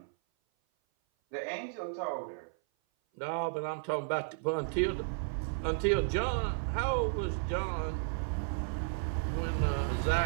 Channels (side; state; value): left; silent; 55 dB below the other